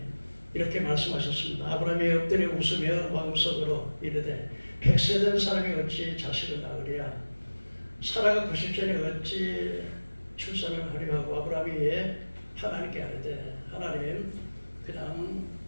이렇게 말씀하셨습니다. 아브라함이 엎드려 웃으며 마음속으로 이르되 100세 된 사람이 어찌 자식을 낳으리야? 사라가 90세니 어찌 출산을 하려 하고 아브라함이 하나님께 아뢰되 하나님 그냥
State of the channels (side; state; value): both; inverted; correlation -1.00